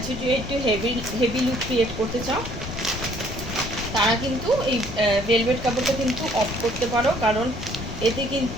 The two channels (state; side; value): noise; left; rumble, 8 dB below the sound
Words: যে একটু হেভি লুক ক্রিয়েট করতে চাও, তারা কিন্তু এই ভেলভেট কাপড়টা কিন্তু অফ করতে পারো, কারণ এতে